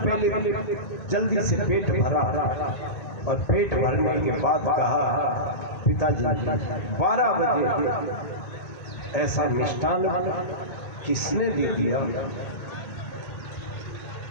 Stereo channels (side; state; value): right; late; 2.2 ms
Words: जल्दी से पेट भरा और पेट भरने के बाद कहा, पिताजी 12 बजे ऐसा मिष्ठान किसने दे दिया?